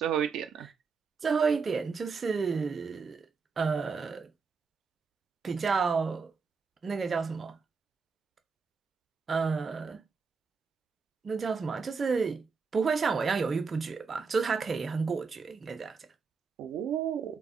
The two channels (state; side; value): quieter; left; 5.1 dB